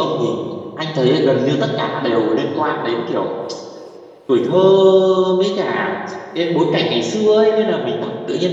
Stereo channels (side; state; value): both; identical; correlation 1.00